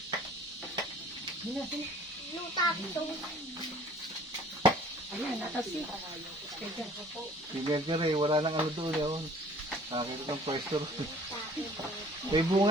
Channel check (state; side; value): normal; both; correlation 0.52